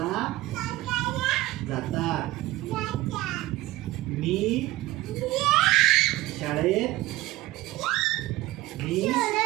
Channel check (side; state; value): left; quieter; 17.5 dB